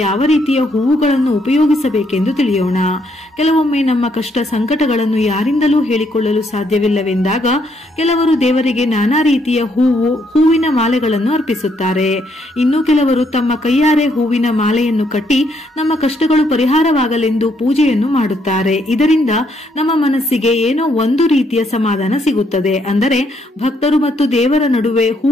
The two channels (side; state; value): both; normal; correlation 0.73